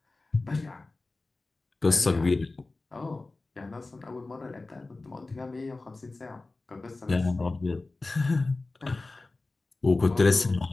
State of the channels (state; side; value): quieter; right; 3.3 dB